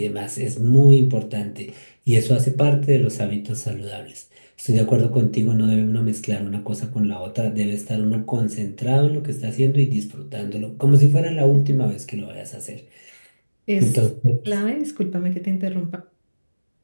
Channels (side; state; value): both; inverted; correlation -1.00